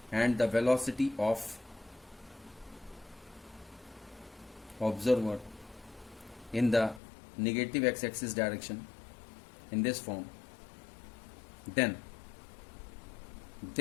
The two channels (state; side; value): drops out; right; at 7.0 s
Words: and the velocity of observer in the negative x-axis direction in this form. Then